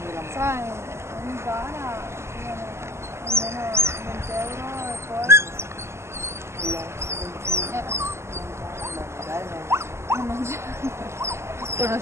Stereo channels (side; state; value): left; late; 0.13 ms